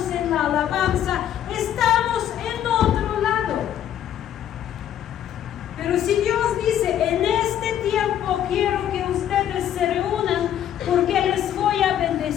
en la alabanza, estamos en otro lado. Pero si Dios dice: en este tiempo quiero que ustedes se reúnan porque les voy a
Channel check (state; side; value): quieter; right; 10.6 dB